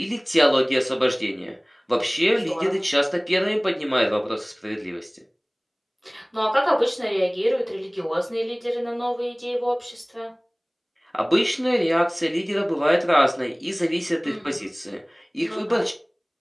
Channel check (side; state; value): both; identical; correlation 1.00